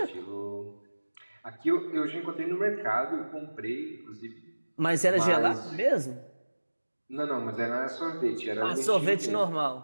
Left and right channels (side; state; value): both; inverted; correlation -1.00